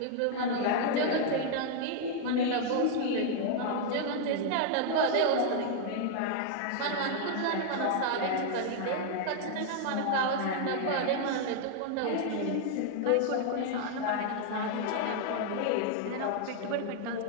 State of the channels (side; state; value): both; different; correlation 0.00